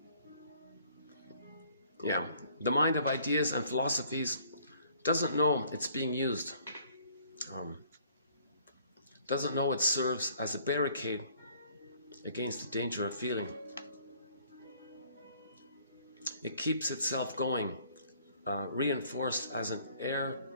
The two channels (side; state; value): both; inverted; correlation -0.60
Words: Yeah, the mind of ideas and philosophies doesn't know it's being used. Doesn't know it serves as a barricade against the danger of feeling. It keeps itself going, reinforced as an